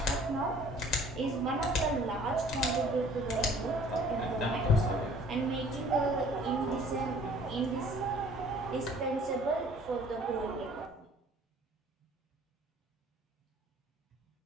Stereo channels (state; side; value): normal; both; correlation 0.53